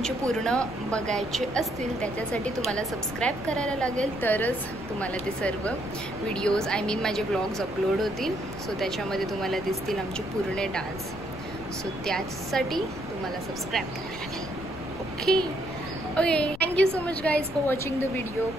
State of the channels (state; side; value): noise; left; rumble, 14 dB below the sound